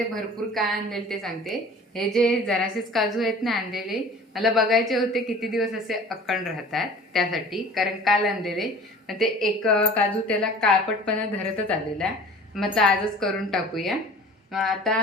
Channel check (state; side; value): normal; both; correlation 0.44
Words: भरपूर काय आणलेले ते सांगते. हे जे जरासेच काजू आहेत ना आणलेले, मला बघायचे होते किती दिवस असे अखंड राहतात त्यासाठी, कारण काल आणलेले. मग ते एक काजू त्याला काळपटपणा धरतच आलेला. मग आजच करून टाकूया. मग आता